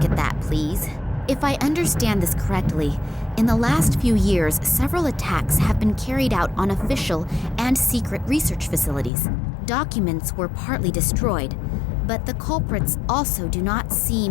at that, please. If I understand this correctly, in the last few years, several attacks have been carried out on official and secret research facilities. Documents were partly destroyed, but the culprits also do not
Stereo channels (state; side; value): drops out; right; at 9.1 s